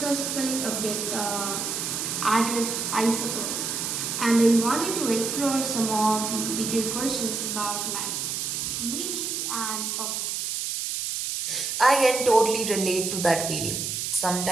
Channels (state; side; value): noise; right; hiss, 2 dB below the sound